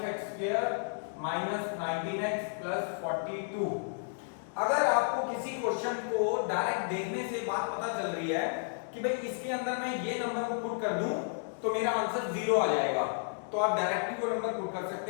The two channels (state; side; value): silent; right; digital silence